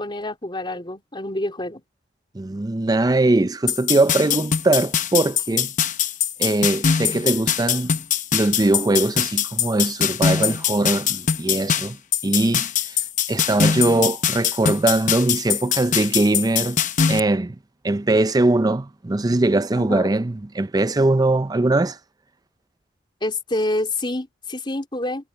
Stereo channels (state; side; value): normal; both; correlation 0.60